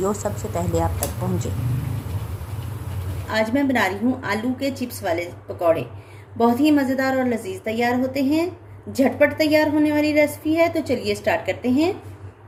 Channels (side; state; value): both; identical; correlation 1.00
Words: सबसे पहले आप तक पहुंचे। आज मैं बना रही हूँ आलू के चिप्स वाले पकौड़े। बहुत ही मज़ेदार और लजीज तैयार होते हैं। झटपट तैयार होने वाली रेसिपी है, तो चलिए स्टार्ट करते हैं।